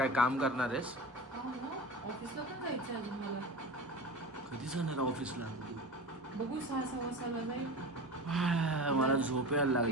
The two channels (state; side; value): normal; both; correlation 0.30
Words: काम करणार आहेस? ऑफिसला पण जायचं अजून मला. कधी जाणार ऑफिसला? बघू 6 वाजता जाईल. मला झोप यायला